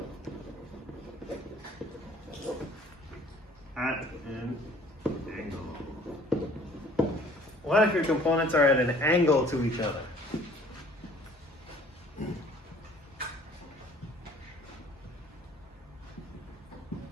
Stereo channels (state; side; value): normal; both; correlation 0.54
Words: at an angle? What if your components are at an angle to each other?